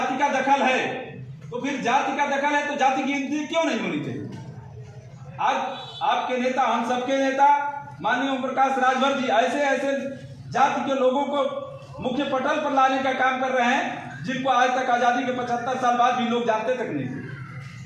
का दखल है। तो फिर जाति का दखल है तो जाति की गिनती क्यों नहीं होनी चाहिए? आज आपके नेता, हम सबके नेता माननीय ओम प्रकाश राजभर जी ऐसे ऐसे जाति के लोगों को मुख्य पटल पर लाने का काम कर रहे हैं जिनको आज तक आजादी के 75 साल बाद भी लोग जानते तक नहीं थे।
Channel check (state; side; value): identical; both; correlation 1.00